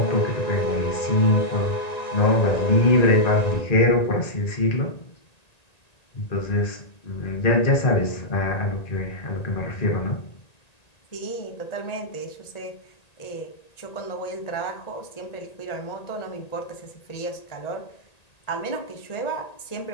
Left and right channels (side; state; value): right; late; 1.9 ms